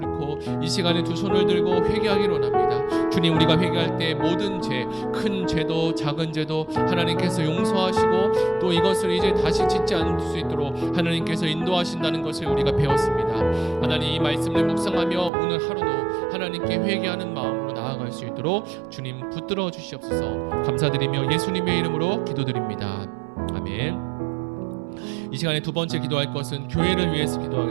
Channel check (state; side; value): drops out; left; at 15.3 s